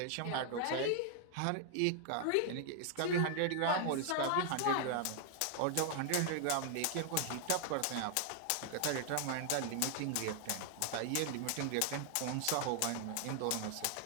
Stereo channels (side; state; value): both; different; correlation 0.00